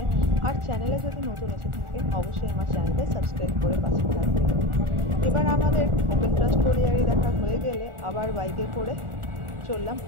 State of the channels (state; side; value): late; left; 1.4 ms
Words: আর চ্যানেলে যদি নতুন এসে থাকেন অবশ্যই আমার চ্যানেলটা সাবস্ক্রাইব করে পাশে থাকবেন। এবার আমাদের ওপেন ক্রাস্ট কলিয়ারি দেখা হয়ে গেলে আবার বাইকে করে চললাম